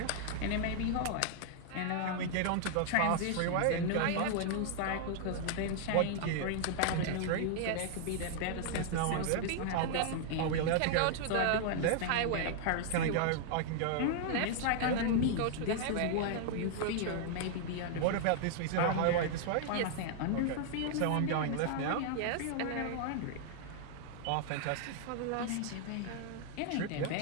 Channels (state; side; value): different; both; correlation -0.01